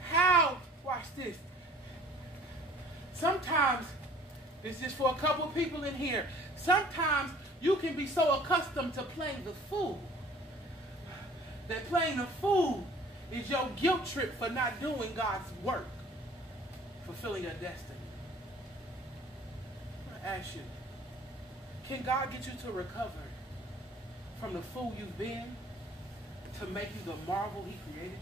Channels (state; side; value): normal; both; correlation 0.51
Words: How? Watch this. Sometimes, this is for a couple of people in here. Sometimes you can be so accustomed to playing the fool that playing the fool is your guilt trip for not doing God's work, fulfilling your destiny. I want to ask you, can God get you to recover from the fool you've been to make you the marvel he created